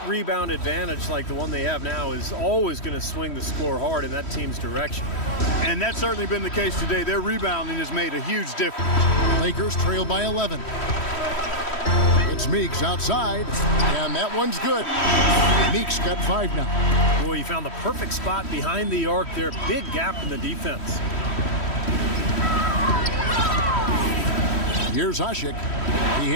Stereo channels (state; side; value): late; right; 3.1 ms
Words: advantage like the one they have now is always going to swing the score hard in that team's direction. And that's certainly been the case today. Their rebounding has made a huge difference. Lakers trail by 11. It's Meeks outside, and that one's good. Meeks got 5 now. Boy, he found the perfect spot behind the arc there. Big gap in the defense. Here's Ashik. He